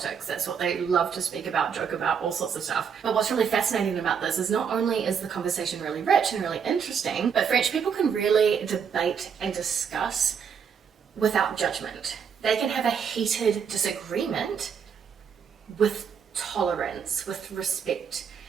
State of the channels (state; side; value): quieter; left; 7.0 dB